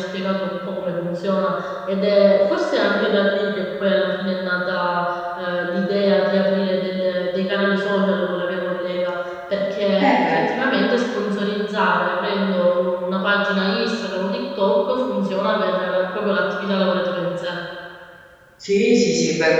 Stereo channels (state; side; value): identical; both; correlation 1.00